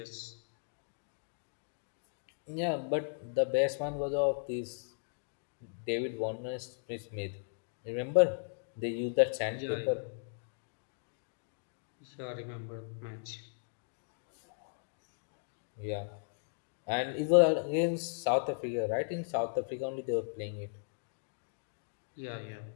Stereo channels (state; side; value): silent; right; digital silence